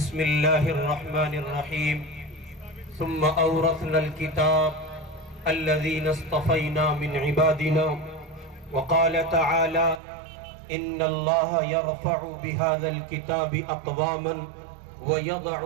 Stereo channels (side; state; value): left; drops out; at 10.0 s